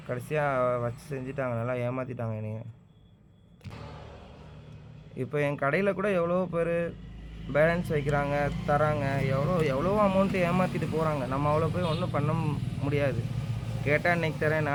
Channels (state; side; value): identical; both; correlation 1.00